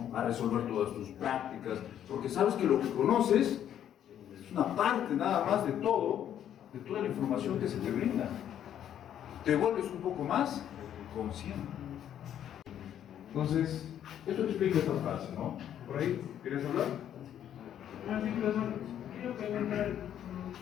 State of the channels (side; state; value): right; quieter; 10.3 dB